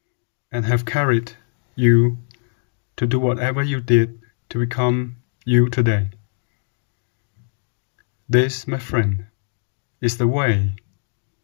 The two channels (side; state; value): right; silent; 63 dB below the other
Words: and have carried you to do whatever you did to become you today. This, my friend, is the way.